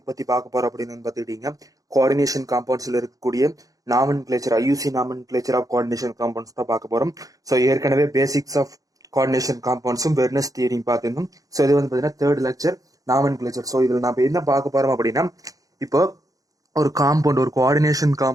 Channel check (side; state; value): left; late; 0.17 ms